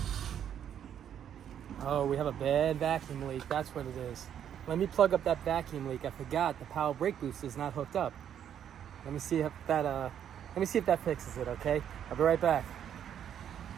Oh, we have a bad vacuum leak. That's what it is. Let me plug up that vacuum leak. I forgot the power brake boost is not hooked up. Let me see if that fixes it. Okay, I'll be right back.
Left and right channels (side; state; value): left; quieter; 9.4 dB